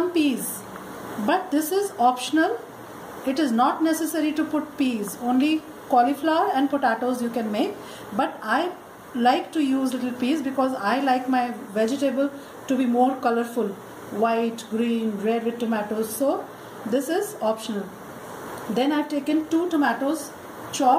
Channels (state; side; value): identical; both; correlation 1.00